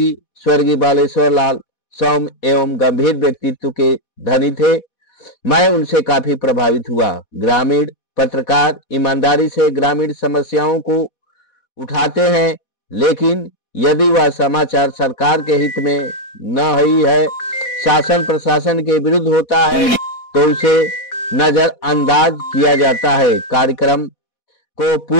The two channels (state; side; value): late; right; 4.1 ms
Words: स्वर्गीय बालेश्वर लाल सौम्य एवं गंभीर व्यक्तित्व के धनी थे। मैं उनसे काफी प्रभावित हुआ। ग्रामीण पत्रकार ईमानदारी से ग्रामीण समस्याओं को उठाते हैं, लेकिन यदि वह समाचार सरकार के हित में न ही है, शासन प्रशासन के विरुद्ध होता है, तो उसे नजरअंदाज किया जाता है। कार्यक्रम को